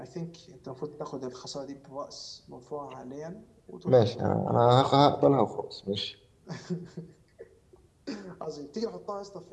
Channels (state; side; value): identical; both; correlation 1.00